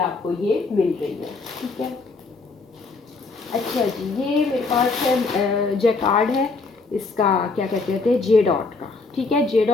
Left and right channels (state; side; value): quieter; right; 3.9 dB